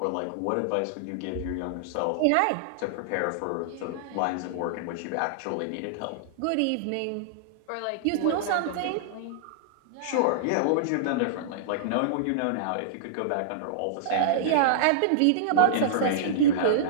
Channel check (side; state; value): both; different; correlation -0.02